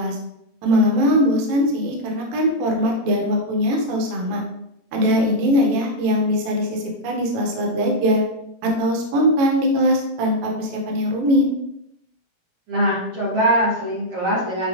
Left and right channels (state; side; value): late; left; 18 ms